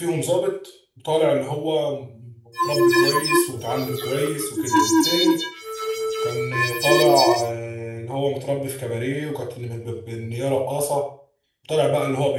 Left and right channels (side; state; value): both; identical; correlation 1.00